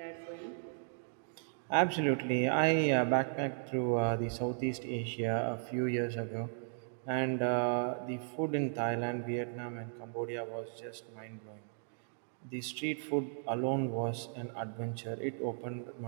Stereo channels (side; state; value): left; silent; digital silence